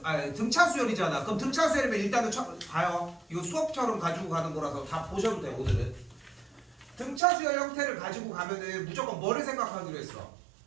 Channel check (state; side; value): drops out; left; at 7.2 s